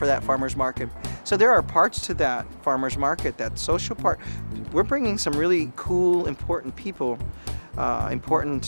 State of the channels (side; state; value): both; inverted; correlation -1.00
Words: that farmer's market? So there are parts to that farmer's market, that social part. We're bringing some really cool, important people,